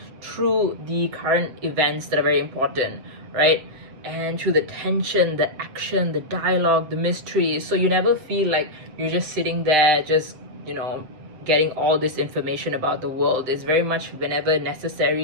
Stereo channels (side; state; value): left; late; 7.8 ms